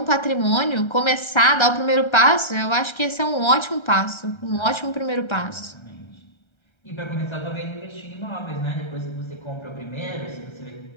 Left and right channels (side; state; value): right; late; 1.3 ms